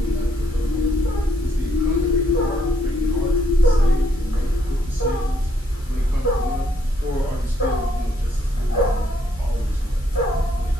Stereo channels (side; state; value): both; normal; correlation 0.72